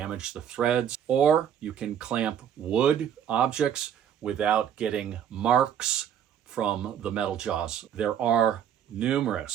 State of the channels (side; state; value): left; quieter; 9.1 dB